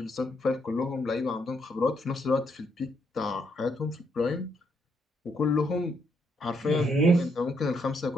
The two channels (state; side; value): normal; both; correlation 0.75